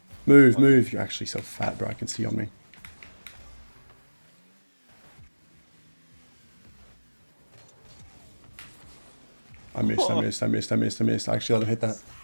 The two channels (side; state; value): both; inverted; correlation -1.00